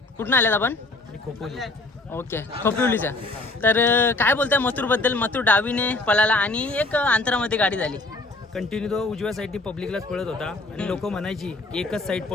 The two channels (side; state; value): right; quieter; 3.1 dB